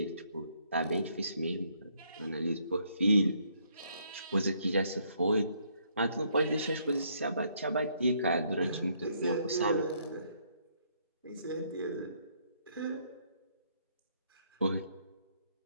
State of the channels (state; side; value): inverted; both; correlation -0.69